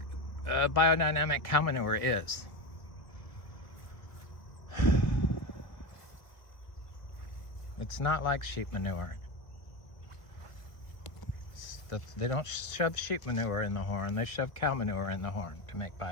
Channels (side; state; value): right; late; 1.5 ms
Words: biodynamic cow manure is. It's not like sheep manure. They don't shove sheep manure in the horn, they shove cow manure in the horn to make